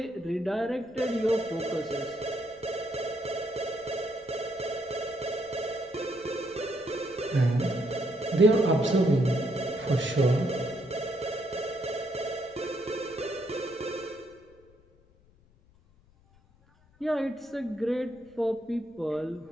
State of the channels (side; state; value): left; noise; rumble, 29 dB below the sound